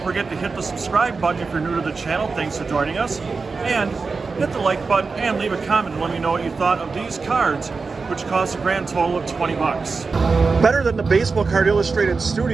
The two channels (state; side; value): quieter; left; 4.4 dB